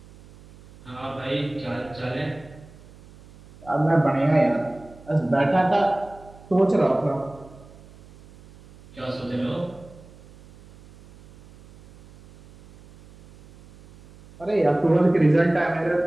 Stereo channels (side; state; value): right; noise; hum, 23 dB below the sound